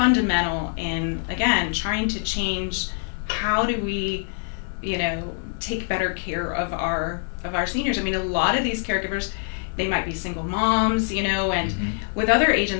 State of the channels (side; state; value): right; silent; 60 dB below the other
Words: in, again, trying to change how do we, take better care of our seniors. I mean, a lot of these caregivers, they might be single moms, and Mm-hmm. with other